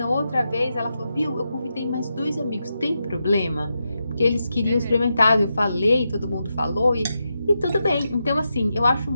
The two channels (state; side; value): inverted; both; correlation -0.87